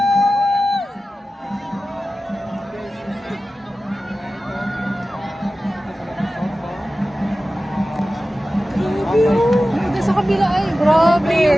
Sa kabila ay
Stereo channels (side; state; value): both; normal; correlation 0.95